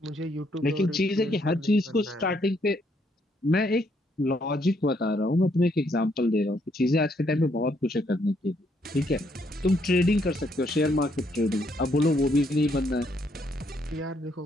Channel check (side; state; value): both; normal; correlation 0.72